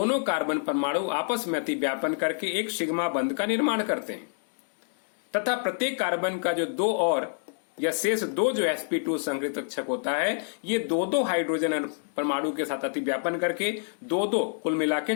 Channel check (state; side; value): silent; right; digital silence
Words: कार्बन परमाणु आपस में अतिव्यापन करके एक सिग्मा बंध का निर्माण करते हैं, तथा प्रत्येक कार्बन का जो 2 और या शेष 2 जो sp2 संकरित कक्षक होता है, ये 2 हाइड्रोजन परमाणु के साथ अतिव्यापन करके 2 कुल मिला के